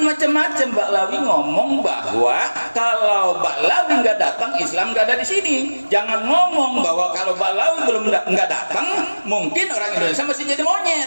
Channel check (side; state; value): both; inverted; correlation -1.00